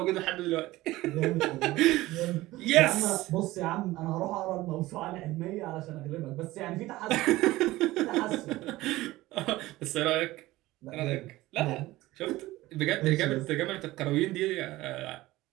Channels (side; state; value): left; quieter; 17.9 dB